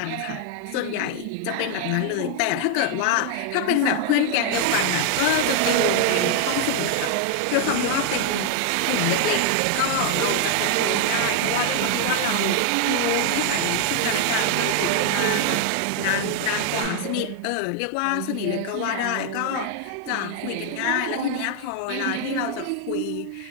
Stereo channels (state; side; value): different; both; correlation 0.00